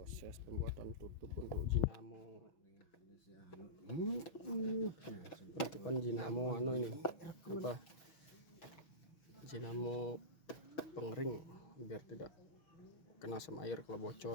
proses pembuatan tutup untuk dinamo. Penutupan dinamo ini apa, dinamo pengering biar tidak kena sama air kalau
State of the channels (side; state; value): right; late; 6.1 ms